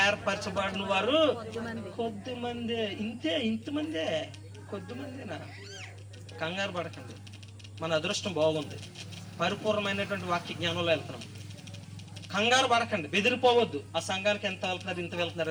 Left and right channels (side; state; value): both; identical; correlation 1.00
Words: ఏర్పరచబడిన వారు కొద్దిమందే. ఇంతమందే, కొద్దిమందేనా? కంగారు పడకండి, మన అదృష్టం బాగుంది, పరిపూర్ణమైనటువంటి వాక్య జ్ఞానంలో వెళ్తున్నాం. కంగారు పడకండి, బెదిరిపోవద్దు. ఆ సంఘానికి ఎంత వెళ్తున్నారు, ఇంత